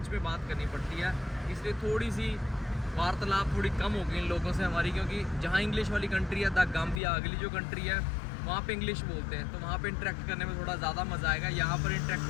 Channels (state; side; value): drops out; right; at 7.0 s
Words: में बात करनी पड़ती है। इसलिए थोड़ी सी वार्तालाप थोड़ी कम हो गई इन लोगों से हमारी, क्योंकि जहाँ इंग्लिश वाली कंट्री है, द गाम्बिया अगली जो कंट्री है, वहाँ पे इंग्लिश बोलते हैं, तो वहाँ पे इंटरेक्ट करने में थोड़ा ज़्यादा मज़ा आएगा। यहाँ पर इंटरेक्ट